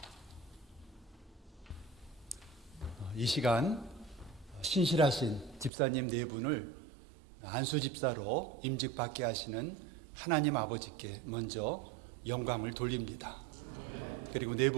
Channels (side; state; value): left; drops out; at 5.7 s